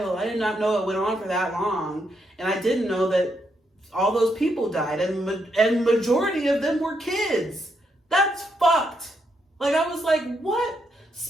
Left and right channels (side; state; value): both; normal; correlation 0.79